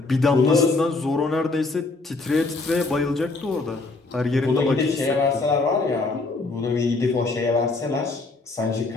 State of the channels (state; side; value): quieter; right; 3.5 dB